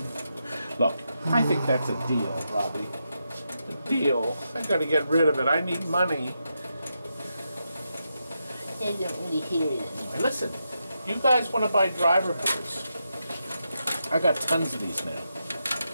Look, I think that's a deal, Robbie. A deal. I got to get rid of it. I need money. I don't really hear it anymore. Listen, you guys want to buy driver boards? I got tons of these now.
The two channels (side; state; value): both; inverted; correlation -0.85